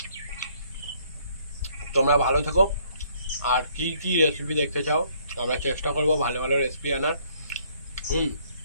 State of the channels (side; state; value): both; inverted; correlation -0.64